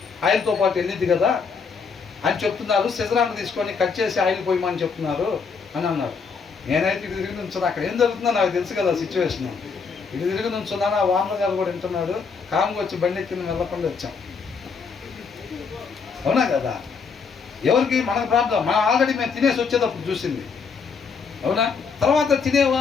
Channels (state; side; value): quieter; right; 5.4 dB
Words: ఆయిల్తో పాటు వెళ్ళిద్ది కదా అని చెప్తున్నారు. సిజరాన్ని తీసుకొని కట్ చేసి ఆయిల్ పోయమని చెప్తున్నారు అని అన్నాడు. నేనైతే ఇటు తిరిగి నుంచున్నా. అక్కడ ఏం జరుగుతుందో నాకు తెలుసు కదా సిచ్యువేషన్. ఇటు తిరిగి నుంచున్నాను. ఆ వానర్ గారు కూడా వింటున్నాడు. కామ్గా వచ్చి బండి ఎక్కింది, వెళ్ళకుండా వచ్చాం. అవునా కదా? ఎవరికి మనకు ప్రాబ్లం, మనం ఆల్రెడీ మేము తినేసి వచ్చేటప్పుడు చూసింది. అవునా? తర్వాత తినే